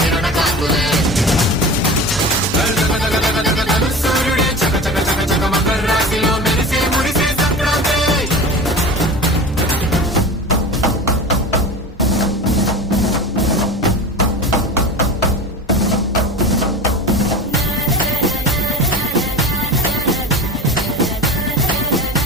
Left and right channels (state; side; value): normal; both; correlation 0.32